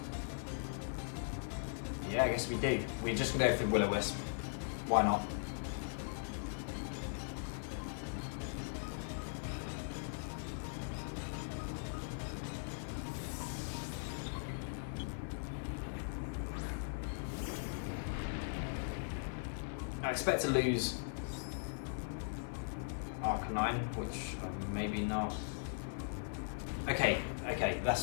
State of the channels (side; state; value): right; silent; 51 dB below the other